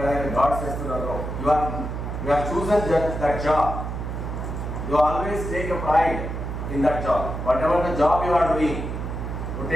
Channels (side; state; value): right; noise; hum, 5 dB below the sound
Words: గార్డ్స్ చేస్తున్నారు. You are chosen that job. You always take a pride in that job. Whatever the job you are doing, you